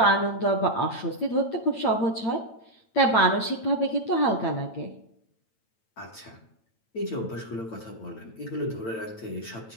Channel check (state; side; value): late; right; 9.0 ms